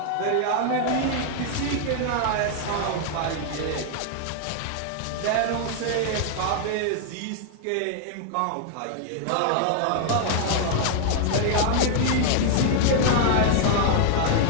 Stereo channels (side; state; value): both; different; correlation 0.00